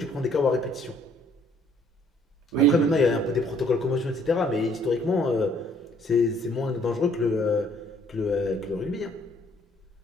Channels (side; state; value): both; normal; correlation 0.63